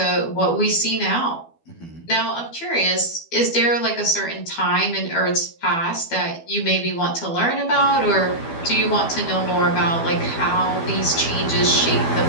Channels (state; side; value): late; right; 12 ms